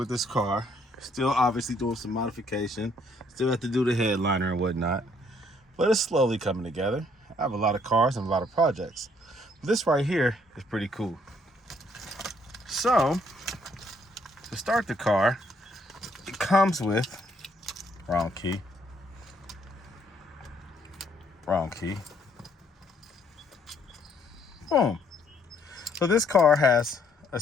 this car. Still obviously doing some modification. Still have to do the headliner and whatnot. But it's slowly coming together. I have a lot of cars and a lot of projects. This right here is pretty cool. So, to start the car, it comes with, wrong key. Boom. So this car has a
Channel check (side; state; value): both; normal; correlation 0.67